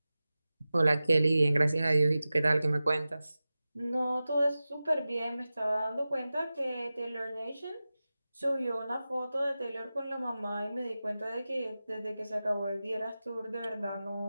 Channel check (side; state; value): both; inverted; correlation -0.95